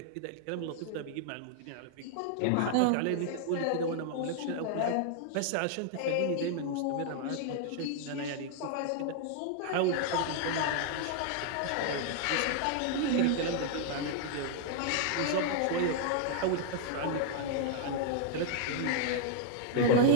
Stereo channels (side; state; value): both; different; correlation 0.00